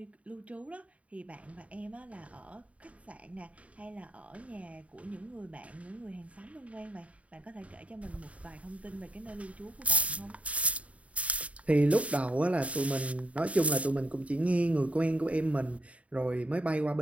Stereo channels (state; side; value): late; left; 0.066 ms